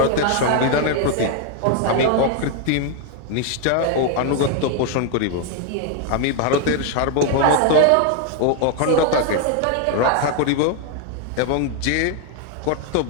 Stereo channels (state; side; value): different; both; correlation 0.00